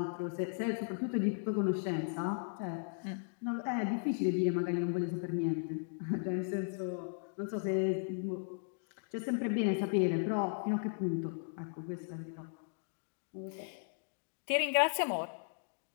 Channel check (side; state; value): right; silent; digital silence